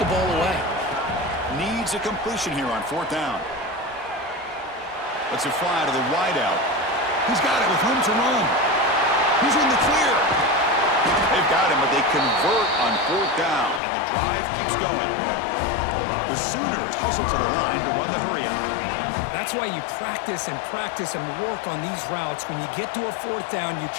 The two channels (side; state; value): right; drops out; at 13.8 s